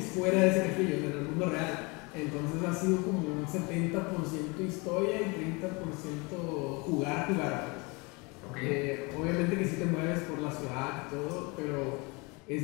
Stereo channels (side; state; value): right; quieter; 28.0 dB